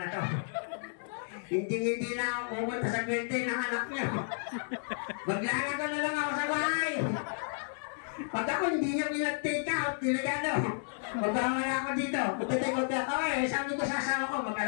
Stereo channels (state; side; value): silent; right; digital silence